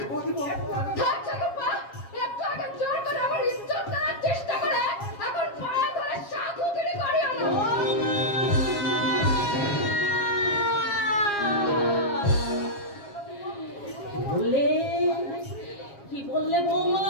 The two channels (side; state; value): right; late; 7.3 ms